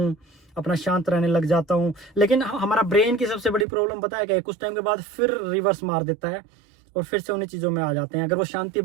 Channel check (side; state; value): left; drops out; at 3.7 s